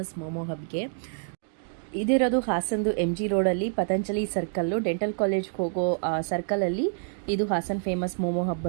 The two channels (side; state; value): left; silent; digital silence